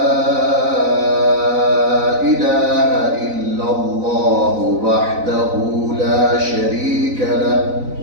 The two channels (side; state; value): left; late; 4.0 ms